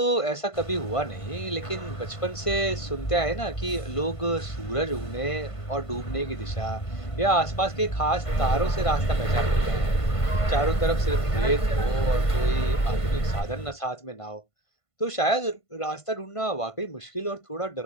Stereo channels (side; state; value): right; late; 1.5 ms